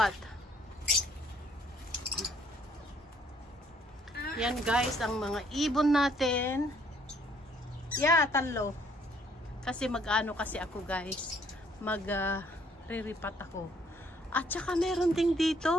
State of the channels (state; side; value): normal; both; correlation 0.64